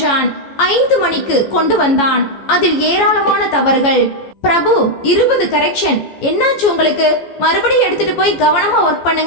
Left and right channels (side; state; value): right; late; 14 ms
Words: 5 மணிக்கு கொண்டு வந்தான். அதில் ஏராளமான தவறுகள். பிரபு, 20 கரெக்ஷன். என்னாச்சு உங்களுக்கு? மறுபடியும் எடுத்துட்டு போய் கவனமா ஒர்க்